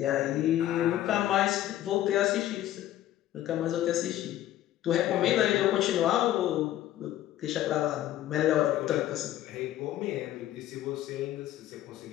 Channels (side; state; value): right; quieter; 13.2 dB